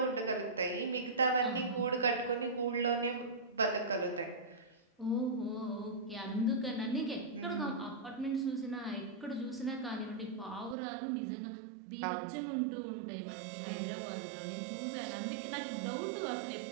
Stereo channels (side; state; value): left; drops out; at 10.8 s